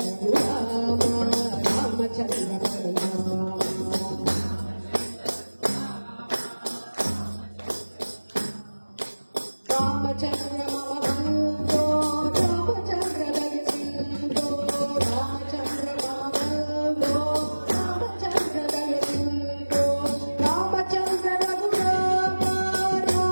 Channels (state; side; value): inverted; both; correlation -1.00